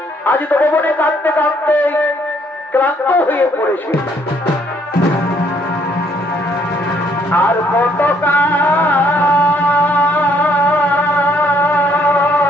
আজ তো ভবনে কাঁদতে কাঁদতে ক্লান্ত হয়ে পড়েছে আর কত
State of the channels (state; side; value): normal; both; correlation 0.67